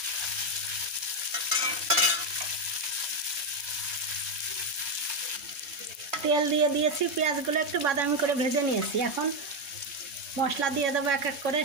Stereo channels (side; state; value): left; late; 4.2 ms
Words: তেল দিয়ে দিয়েছি, পেঁয়াজগুলো একটু বাদামি করে ভেজে নিয়েছি। এখন মশলা দিয়ে দেবো এক এক করে।